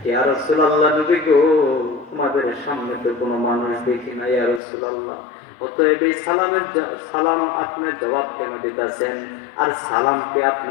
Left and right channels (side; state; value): right; drops out; at 4.6 s